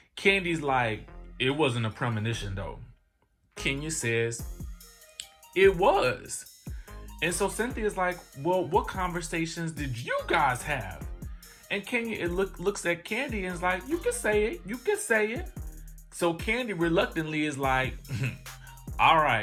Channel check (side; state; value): both; identical; correlation 1.00